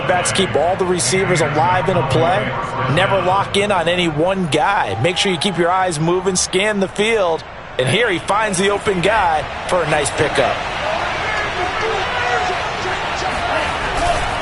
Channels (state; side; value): identical; both; correlation 1.00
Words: keep all the receivers alive in a play, never lock in on any one guy. Make sure you keep your eyes moving, scan the field. And here he finds the open guy for a nice pickup.